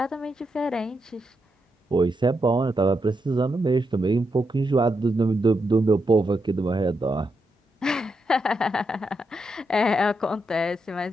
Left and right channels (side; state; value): both; normal; correlation 0.83